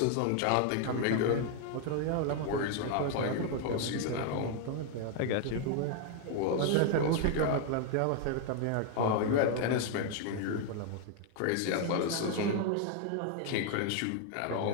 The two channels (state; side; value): different; both; correlation 0.00